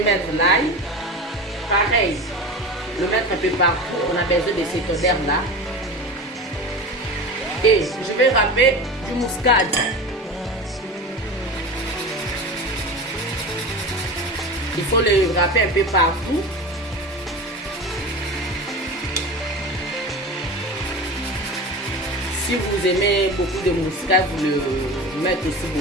mettre l'ail. Pareil, le mettre un peu partout. On a besoin de cette odeur là. Et je vais râper du muscade. Il faut le râper un peu partout. Si vous aimez beaucoup de muscade, vous le mettez aussi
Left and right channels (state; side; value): normal; both; correlation 0.30